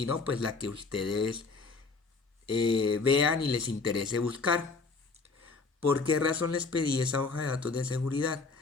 no, pues la que ustedes vean y les interese buscar. ¿Por qué razón les pedí esa hoja de datos de seguridad?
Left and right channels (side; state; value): right; quieter; 4.2 dB